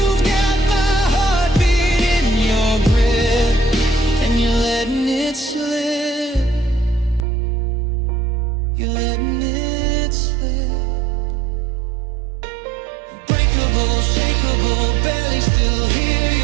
got my heartbeat in your grip, and you're letting it slip. You're letting it slip. Breakable, shakeable, barely still here.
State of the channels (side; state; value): left; drops out; at 7.2 s